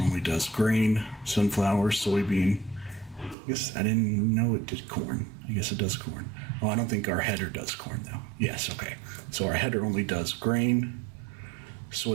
only does grain, sunflower, soybean. I guess I didn't know it did corn. I guess it does corn. Oh, I don't think our header does corn though. Yes, okay. So our header only does grain,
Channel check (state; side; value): drops out; left; at 3.4 s